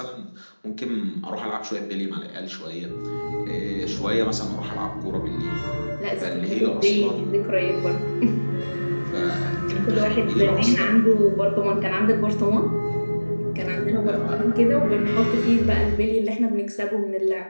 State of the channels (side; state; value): both; inverted; correlation -1.00